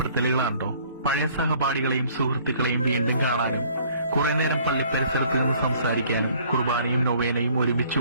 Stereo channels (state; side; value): inverted; both; correlation -0.57